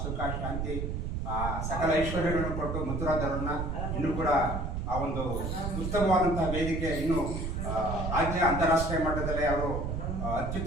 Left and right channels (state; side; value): noise; right; rumble, 3 dB below the sound